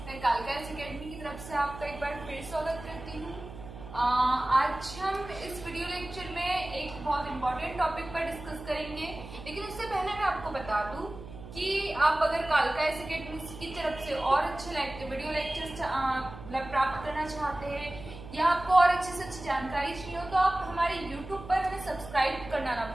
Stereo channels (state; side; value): noise; right; hum, 14 dB below the sound